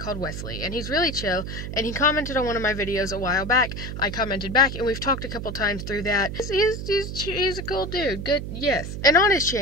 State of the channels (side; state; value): right; noise; hum, 6 dB below the sound